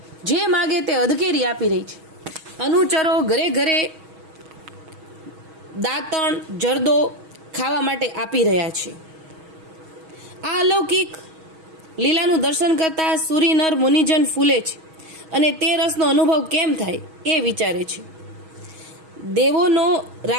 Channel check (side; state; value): left; late; 6.3 ms